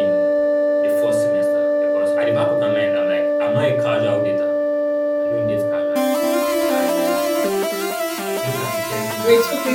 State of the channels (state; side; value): identical; both; correlation 1.00